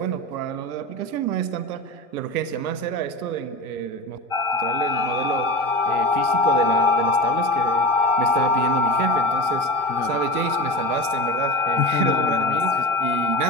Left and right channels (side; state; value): right; late; 1.2 ms